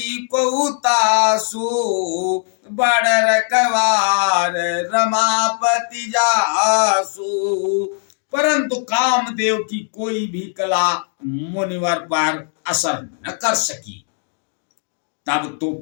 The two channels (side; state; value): right; silent; 61 dB below the other